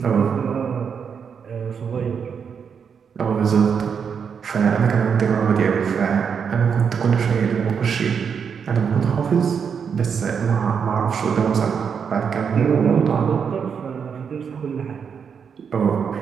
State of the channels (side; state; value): left; quieter; 6.7 dB